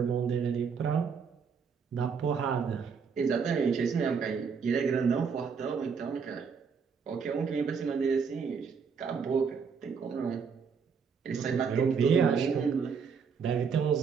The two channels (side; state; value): left; quieter; 6.0 dB